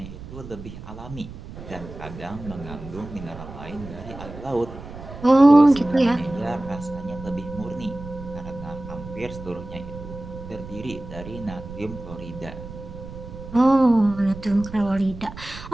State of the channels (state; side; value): noise; right; rumble, 13 dB below the sound